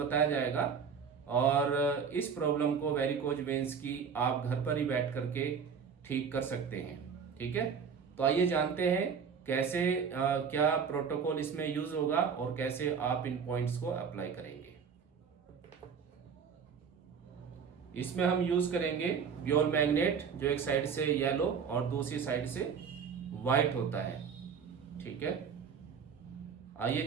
जाएगा और इस प्रॉब्लम को वेरिकोज वेन्स की आप घर पर ही बैठ करके ठीक कर सकते हैं। ठीक है, तो आइए जानते हैं कैसे क्या प्रोटोकॉल इसमें यूज होगा और कैसे आप इन पॉइंट्स को अप्लाई करेंगे। इसमें हम यूज करेंगे ब्योल मैग्नेट, जो एक साइड से येलो और दूसरी साइड से व्हाइट होता है। ठीक है, आइए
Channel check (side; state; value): left; quieter; 6.5 dB